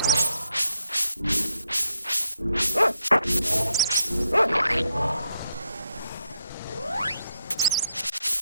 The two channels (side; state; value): both; inverted; correlation -0.78